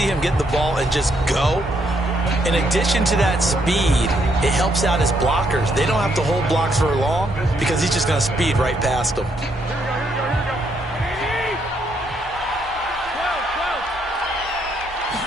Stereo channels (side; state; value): both; normal; correlation 0.74